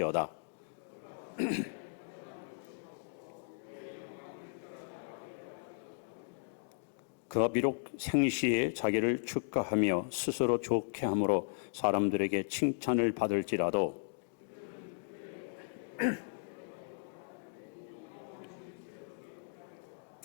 그가 비록 생시에 자기를 축하하며 스스로 좋게 함으로 사람들에게 칭찬을 받을지라도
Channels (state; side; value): silent; right; digital silence